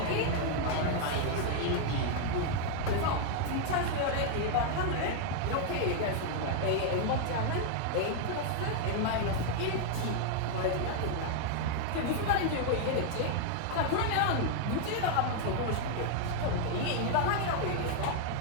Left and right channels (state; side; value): different; both; correlation 0.00